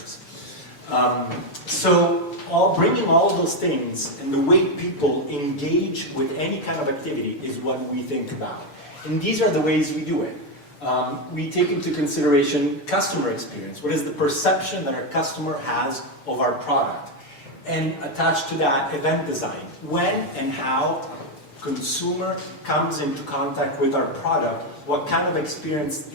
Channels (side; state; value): right; late; 6.8 ms